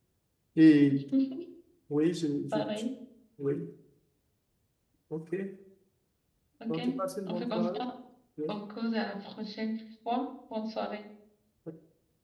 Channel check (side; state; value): both; identical; correlation 1.00